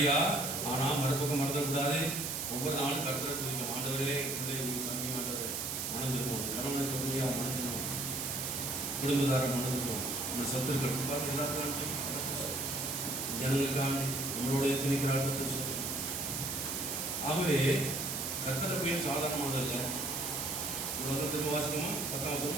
ஆனால் மறுபக்கம் மறந்துடக்கூடாது. ஒவ்வொரு நாளும் கர்த்தரை துதிக்கும். ஆண்டவரே, பிள்ளைகளுக்கு சந்தி ஆண்டவரே மணந்துருக்கணும். கணவனை தொழிலையாக மணந்துக்கணும், குடும்பத்தாரை மணந்துக்கணும். நம்ம சத்துருக்கள் பார்த்து எல்லாத்துக்கும் ஜனங்களுக்காண்டி நம்மளோட திணிக்கிறார்கள் சொல்லு. ஆகவே கர்த்தரை போய் சாதாரணமானதல்ல. வசனத்துக்கு வாசகமா 10ஆம்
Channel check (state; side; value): noise; right; hiss, 2 dB below the sound